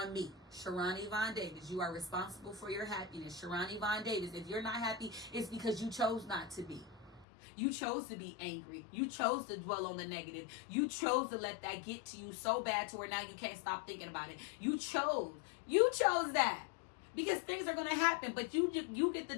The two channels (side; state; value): right; drops out; at 7.2 s